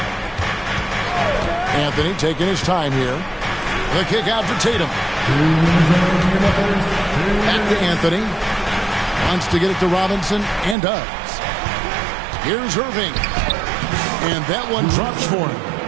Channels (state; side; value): drops out; left; at 10.8 s